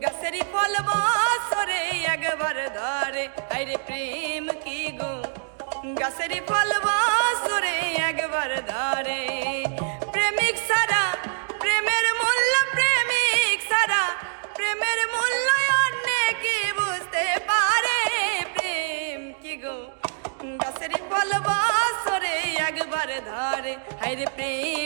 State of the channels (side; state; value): left; silent; digital silence